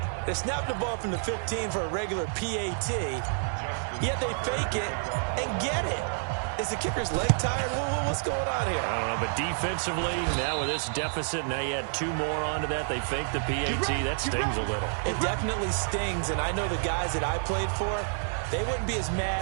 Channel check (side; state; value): left; silent; 59 dB below the other